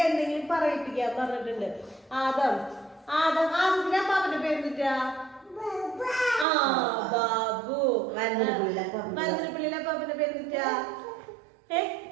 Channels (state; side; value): drops out; left; at 6.5 s